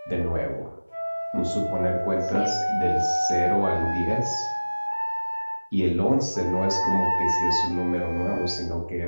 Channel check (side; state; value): both; inverted; correlation -1.00